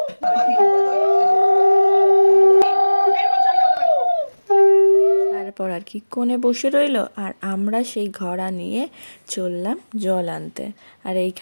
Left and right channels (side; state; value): both; inverted; correlation -1.00